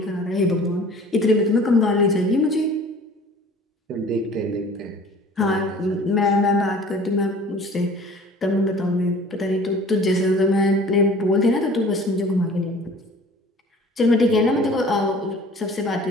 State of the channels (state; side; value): normal; both; correlation 0.47